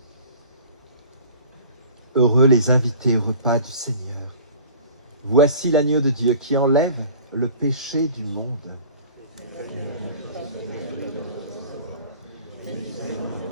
Heureux les invités au repas du Seigneur. Voici l'agneau de Dieu qui enlève le péché du monde.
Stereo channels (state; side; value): inverted; both; correlation -0.45